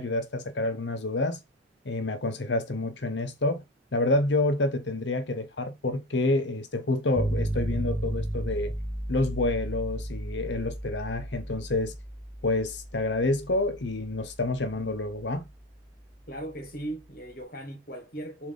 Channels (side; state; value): both; normal; correlation 0.25